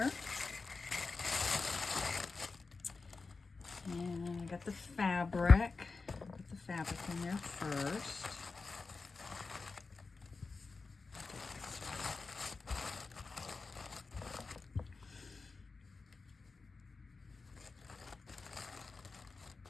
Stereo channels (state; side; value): quieter; right; 4.2 dB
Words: And I got the fabric. Put the fabric in there first.